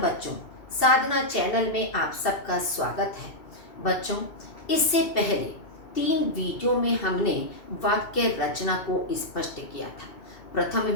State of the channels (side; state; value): right; late; 2.7 ms